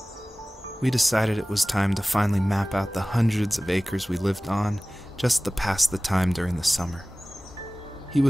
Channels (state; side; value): normal; both; correlation 0.98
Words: We decided it was time to finally map out the hundreds of acres we lived on just to pass the time during the summer. He